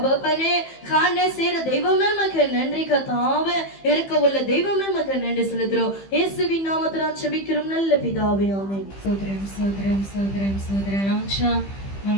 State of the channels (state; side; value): late; right; 15 ms